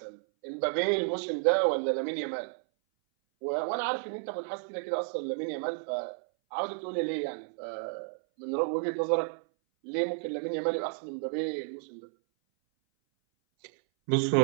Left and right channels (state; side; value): silent; left; 57 dB below the other